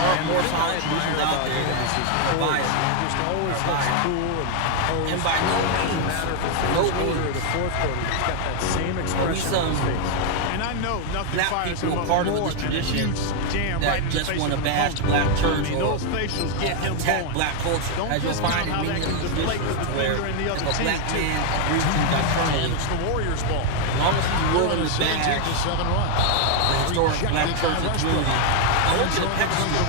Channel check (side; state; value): both; different; correlation 0.01